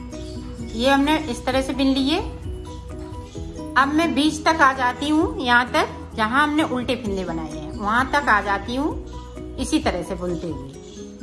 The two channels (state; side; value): identical; both; correlation 1.00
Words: ये हमने इस तरह से बिन लिए। अब मैं बीच तक आ जाती हूँ, यहाँ तक जहाँ हमने उल्टे फिंदे बनाए हैं वहां तक आ जाती हूँ इसी तरह से बुनते